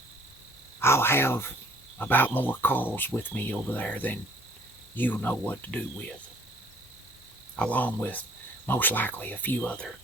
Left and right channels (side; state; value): both; normal; correlation 0.57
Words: I'll have about more calls with me over there than you'll know what to do with, along with most likely a few other